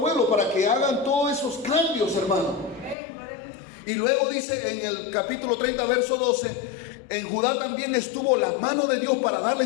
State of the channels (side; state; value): right; drops out; at 3.0 s